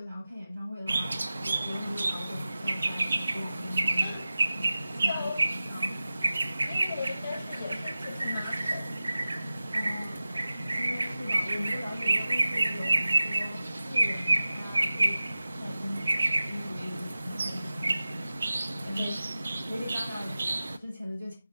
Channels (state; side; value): inverted; both; correlation -0.96